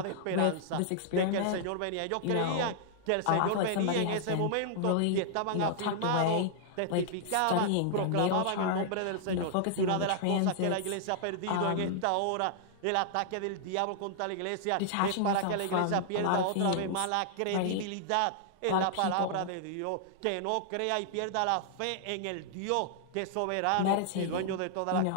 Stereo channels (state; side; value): different; both; correlation -0.01